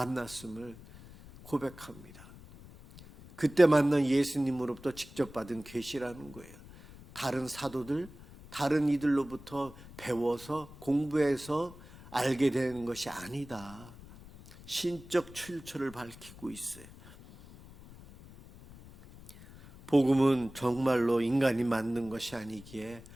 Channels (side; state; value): left; noise; rumble, 19 dB below the sound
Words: 고백합니다. 그때 만난 예수님으로부터 직접 받은 계시라는 거예요. 다른 사도들, 다른 이들로부터 배워서 공부해서 알게 되는 것이 아니다. 신적 출처를 밝히고 있어요. 복음은 정말로 인간이 만든 것이 아니기에